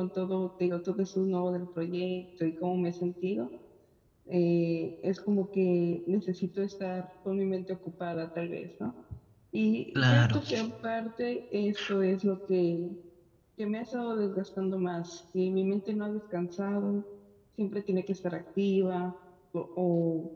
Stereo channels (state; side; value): identical; both; correlation 1.00